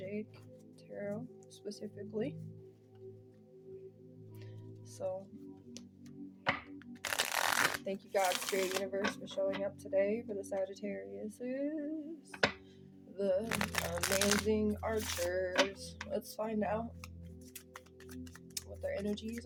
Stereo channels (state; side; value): identical; both; correlation 1.00